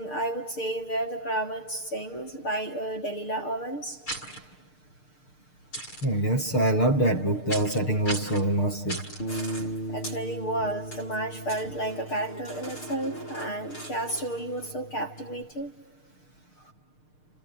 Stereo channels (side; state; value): right; late; 6.6 ms